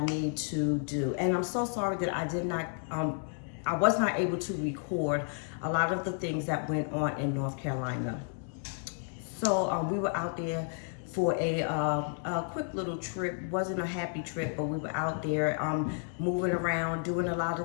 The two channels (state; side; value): silent; right; 57 dB below the other